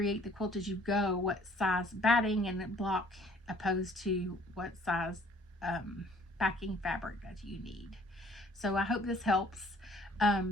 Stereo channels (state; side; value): normal; both; correlation 0.57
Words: the Quilt As You Go, what size batting and block opposed to what size backing fabric that you need. So I hope this helps.